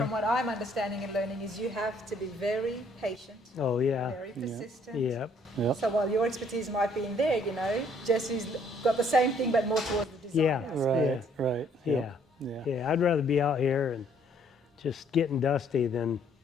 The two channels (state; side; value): normal; both; correlation 0.64